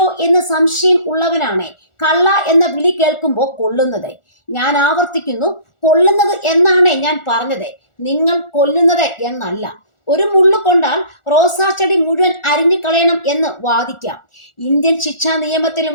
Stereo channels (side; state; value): right; late; 1.4 ms